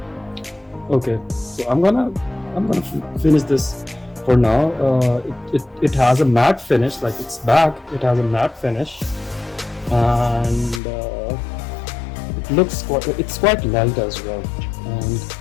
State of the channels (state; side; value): drops out; right; at 10.8 s